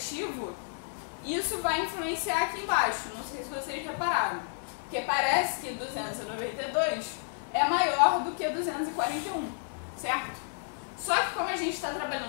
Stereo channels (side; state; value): right; silent; digital silence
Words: isso vai influenciar aqui embaixo. Não sei se vocês repararam. Porque parece que 292 é maior do que 241, certo? Só que como a gente está